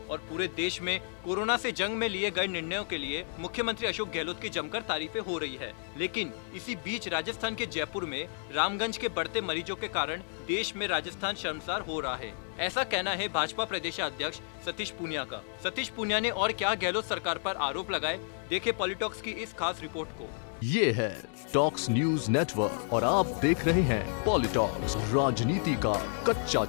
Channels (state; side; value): silent; right; 57 dB below the other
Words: और पूरे देश में कोरोना से जंग में लिए गए निर्णयों के लिए मुख्यमंत्री अशोक गहलोत की जमकर तारीफें हो रही है। लेकिन इसी बीच राजस्थान के जयपुर में रामगंज के बढ़ते मरीजों के कारण देश में राजस्थान शर्मसार हो रहा है। ऐसा कहना है भाजपा प्रदेशाध्यक्ष सतीश पूनिया का। सतीश पूनिया ने और क्या गहलोत सरकार पर आरोप लगाए, देखे पॉलिटॉक्स की इस खास रिपोर्ट को। ये है टॉक्स न्यूज नेटवर्क और आप देख रहे हैं पॉलिटॉक्स, राजनीति का कच्चा